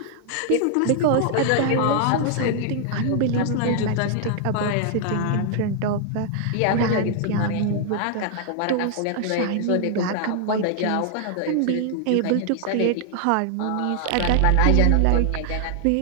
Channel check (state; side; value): different; both; correlation 0.00